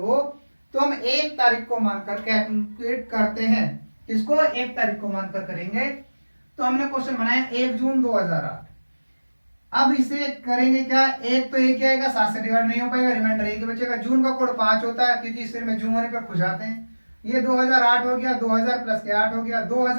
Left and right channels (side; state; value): both; inverted; correlation -1.00